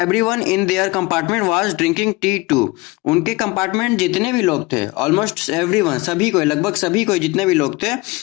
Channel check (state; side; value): quieter; right; 22.9 dB